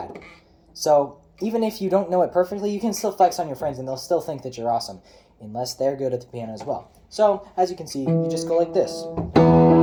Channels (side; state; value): both; identical; correlation 1.00